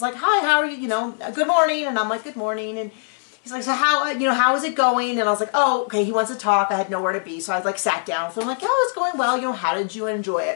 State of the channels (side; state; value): right; silent; 64 dB below the other